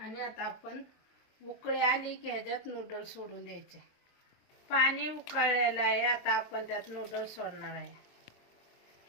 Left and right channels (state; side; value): late; right; 22 ms